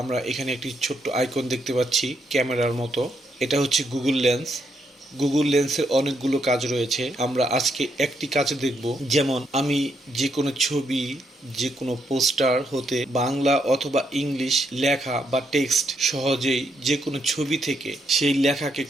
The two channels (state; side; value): normal; both; correlation 0.77